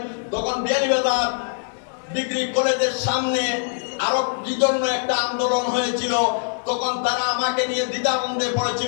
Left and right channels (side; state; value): right; silent; 64 dB below the other